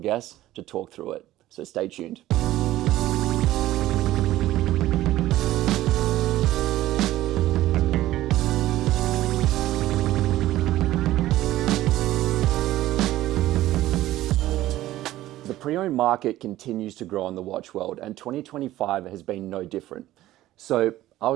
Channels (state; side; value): quieter; left; 15.1 dB